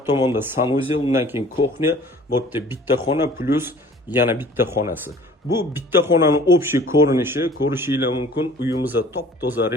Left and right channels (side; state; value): both; normal; correlation 0.50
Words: tomonda sanuzel, undan keyin kuxnya, bu yerda bitta xona plus yana bitta xonasi. Bu bitta xonaning общий ko'rinishi, ko'rishingiz mumkin. Uyimizda top-toza